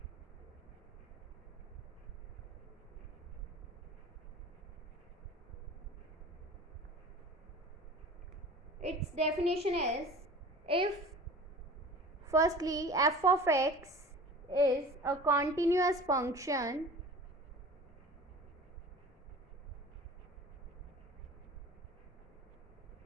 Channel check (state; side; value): normal; both; correlation 0.41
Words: Its definition is, if firstly f of x is a continuous function